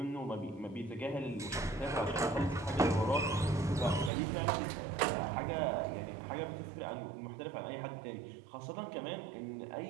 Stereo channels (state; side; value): drops out; left; at 4.1 s